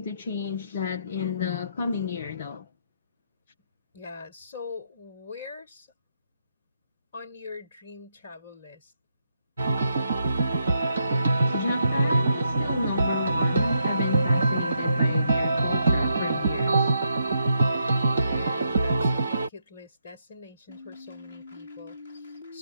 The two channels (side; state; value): both; inverted; correlation -0.80